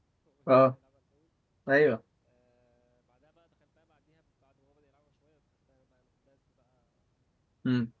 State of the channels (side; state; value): both; identical; correlation 1.00